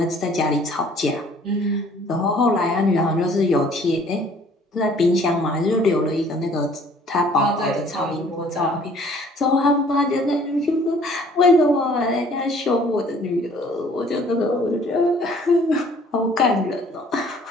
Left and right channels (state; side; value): normal; both; correlation 0.56